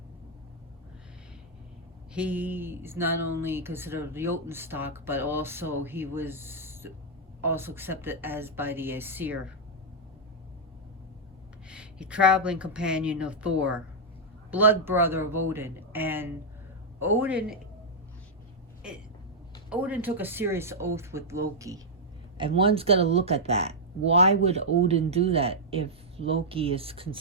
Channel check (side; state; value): both; normal; correlation -0.06